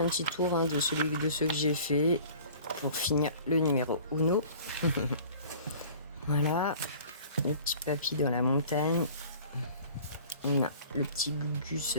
petit tour hein, de ceux que j'ai fait pour finir le numéro Uno. Voilà, le petit papy dans la montagne. On a le petit Gugus,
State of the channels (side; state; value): both; inverted; correlation -0.47